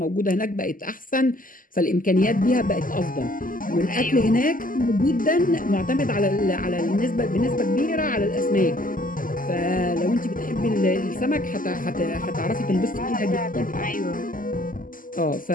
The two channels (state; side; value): late; right; 0.40 ms